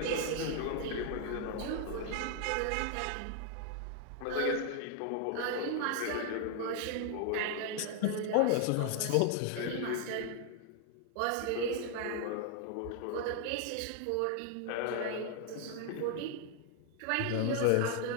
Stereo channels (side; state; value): both; different; correlation 0.00